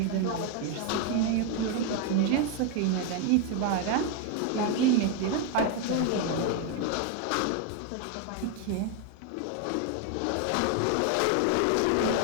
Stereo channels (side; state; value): both; different; correlation 0.01